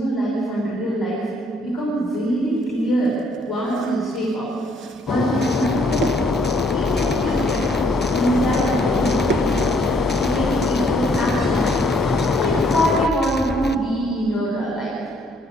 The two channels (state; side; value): normal; both; correlation 0.66